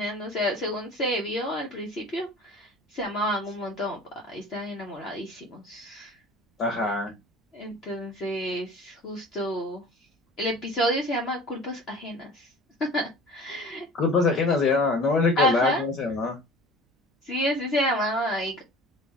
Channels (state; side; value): normal; both; correlation 0.43